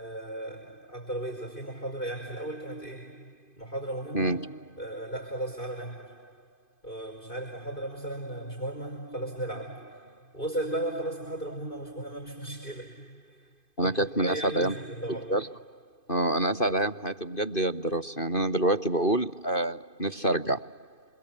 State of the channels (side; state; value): right; late; 2.5 ms